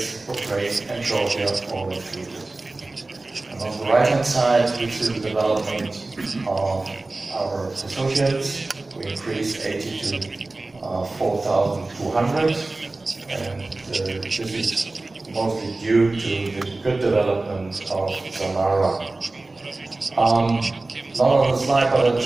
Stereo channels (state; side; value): quieter; left; 3.2 dB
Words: Ukraine, and Georgia, all included. And on the right-hand side, we see the development of our associates. We increased 80 to 4,200, and this is mostly due to the good development of Samara. Not on the slide, but I